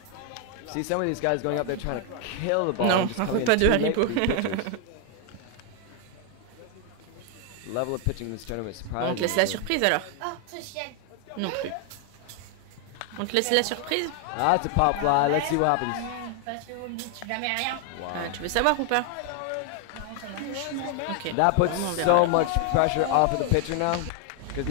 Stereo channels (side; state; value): both; different; correlation 0.00